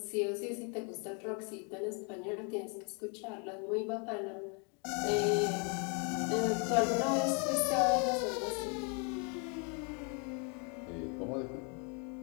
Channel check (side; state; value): right; quieter; 36.5 dB